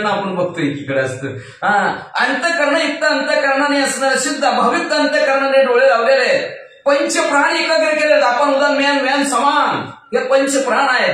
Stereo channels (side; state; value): both; identical; correlation 1.00